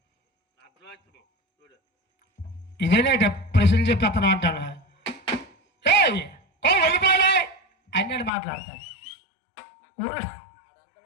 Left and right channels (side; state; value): right; drops out; at 8.3 s